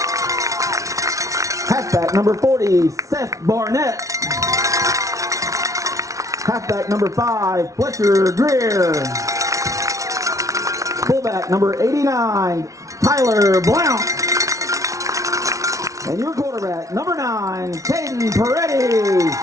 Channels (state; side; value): late; left; 0.16 ms